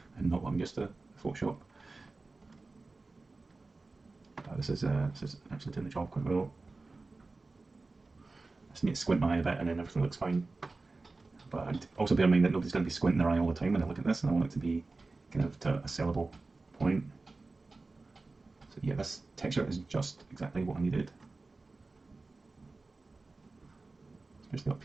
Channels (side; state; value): left; quieter; 3.5 dB